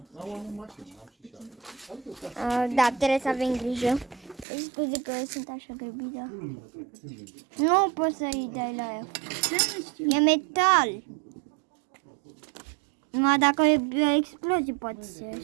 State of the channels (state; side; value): drops out; left; at 4.5 s